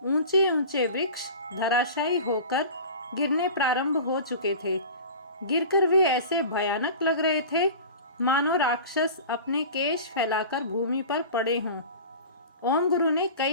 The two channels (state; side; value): inverted; both; correlation -0.36